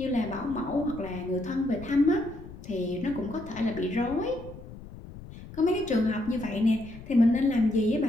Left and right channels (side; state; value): left; noise; rumble, 15 dB below the sound